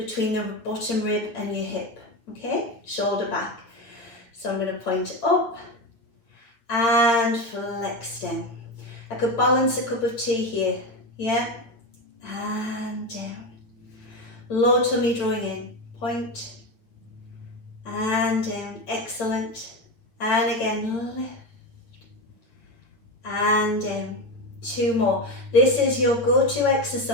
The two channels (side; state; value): right; late; 8.7 ms